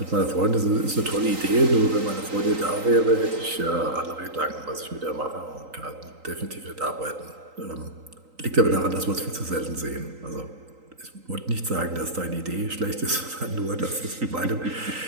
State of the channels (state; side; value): late; left; 3.9 ms